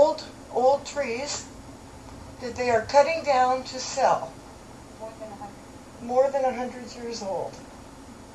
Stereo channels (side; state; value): both; identical; correlation 1.00